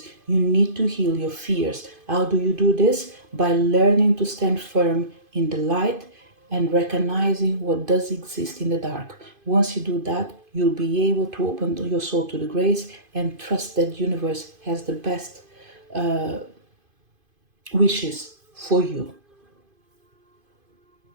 you need to heal your fears. How do you do this? By learning to stand firm in the light and recognizing what does exist in the dark. Once you do that, you'll be able to open your soul to the grace and trust that the universe has the best wishes for you.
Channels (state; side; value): late; left; 2.5 ms